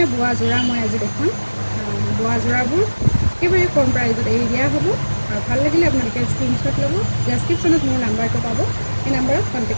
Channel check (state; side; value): inverted; both; correlation -1.00